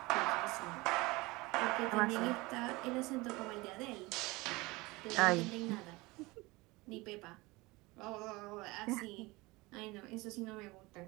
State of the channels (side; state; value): left; quieter; 22.6 dB